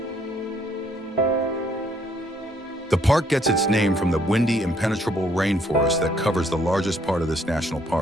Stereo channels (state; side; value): normal; both; correlation 0.67